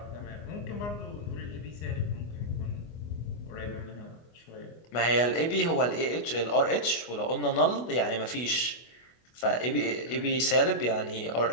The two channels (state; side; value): late; right; 24 ms